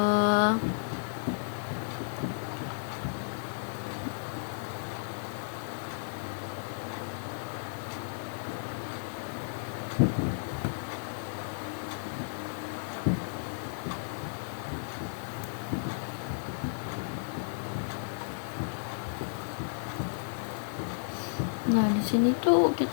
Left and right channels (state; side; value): silent; right; digital silence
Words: nah di sini tuh